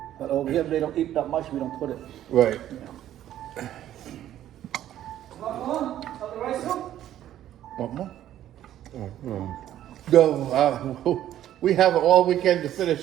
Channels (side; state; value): left; quieter; 12.0 dB